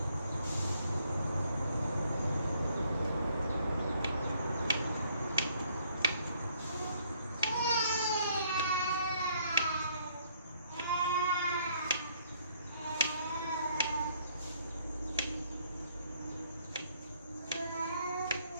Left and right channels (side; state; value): both; inverted; correlation -0.66